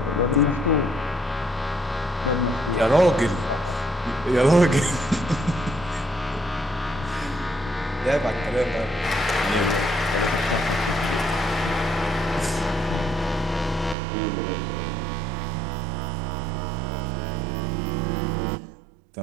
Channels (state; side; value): drops out; left; at 14.0 s